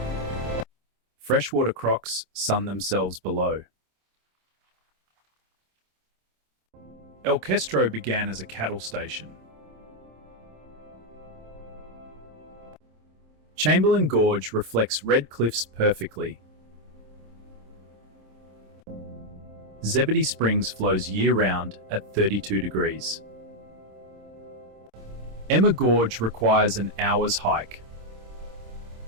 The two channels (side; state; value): left; late; 26 ms